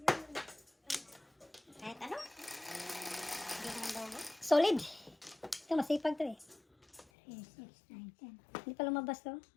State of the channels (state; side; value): drops out; right; at 7.1 s